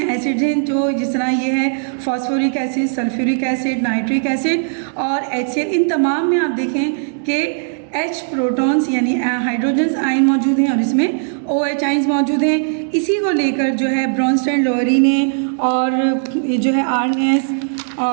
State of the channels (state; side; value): silent; left; digital silence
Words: एसिड हैं जो जिस तरह ये है phosphoric acid, sulphuric acid, nitric acid और HCl, इन तमाम में आप देखें कि H प्रोटॉन्स यानी हाइड्रोजन्स आयन मौजूद हैं और इसमें OH आयंस मौजूद हैं। इसी को लेकर जो है ब्रॉन्स्टेन लोरी ने और ये जो है आर्नेस